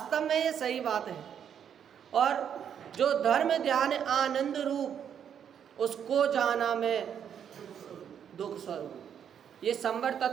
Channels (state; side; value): quieter; left; 8.5 dB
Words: में ये सही बात है। और जो धर्म ध्यान आनंद रूप, उसको जाना मैं दुख स्वरूप, ये संवर